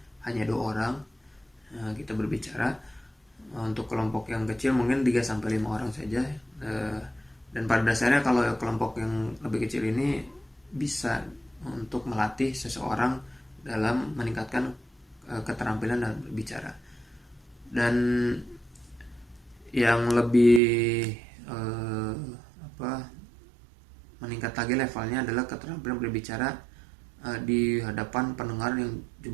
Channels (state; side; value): drops out; left; at 20.6 s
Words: hanya 2 orang kita berbicara. Untuk kelompok yang kecil mungkin 3-5 orang saja. Dan pada dasarnya kalau kelompok yang lebih kecil ini bisa untuk melatih seseorang dalam meningkatkan keterampilan dalam berbicara. Dan yang lebih meningkat lagi levelnya adalah keterampilan berbicara di hadapan pendengar yang